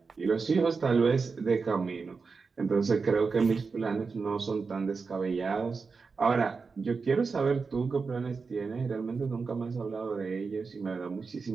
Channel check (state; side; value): quieter; left; 4.8 dB